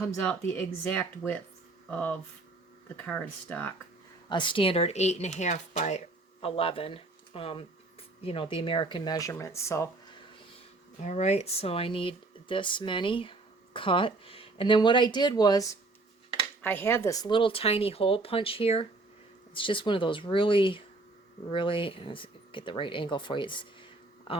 out the exact width of the cardstock. A standard 8.5 by 11, you know, the American measurements. So, all right, so I need this many cut. And then what I did was I had this little tiny hole punch here. It's just one of those really, let's get the right angle for you. It's,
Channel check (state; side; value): quieter; left; 3.2 dB